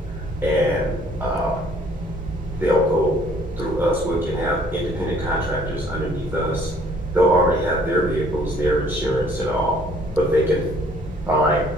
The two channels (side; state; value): both; normal; correlation 0.59